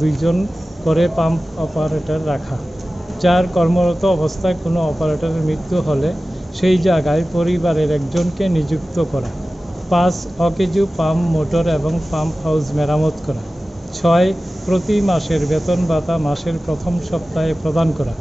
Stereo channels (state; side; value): normal; both; correlation 0.96